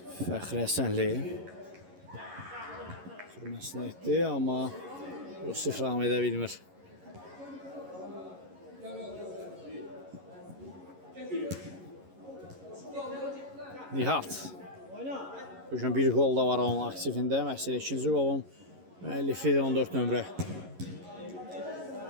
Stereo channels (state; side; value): late; left; 11 ms